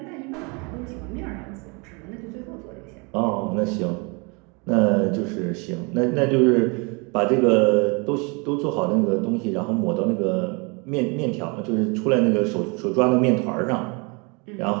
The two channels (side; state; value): left; quieter; 30.8 dB